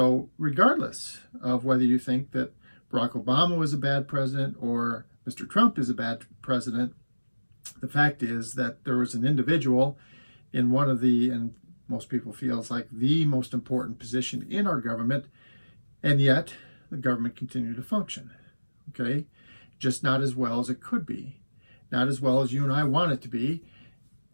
regardless of whether you think that Barack Obama was a bad president or Mr. Trump is a bad president, the fact is that there was an individual in one of the, and most people feel it's like the most important position in our government, and yet the government continued to function, okay? Just not as well as it could be, not as well as you and I want it to be,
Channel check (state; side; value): inverted; both; correlation -1.00